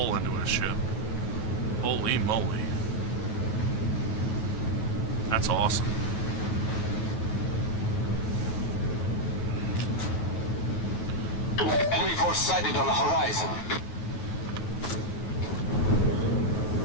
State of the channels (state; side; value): late; right; 9.3 ms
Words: into his ship. Holy moly. That's awesome. Enemy force sighted on the horizon.